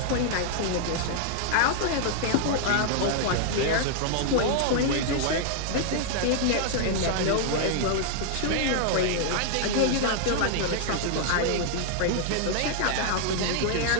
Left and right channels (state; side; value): different; both; correlation -0.01